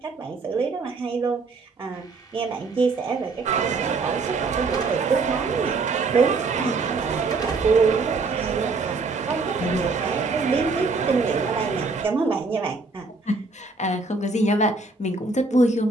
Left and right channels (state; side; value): quieter; left; 3.9 dB